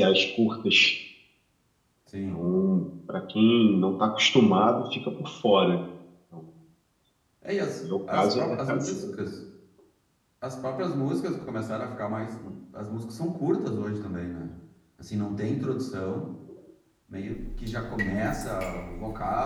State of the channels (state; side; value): identical; both; correlation 1.00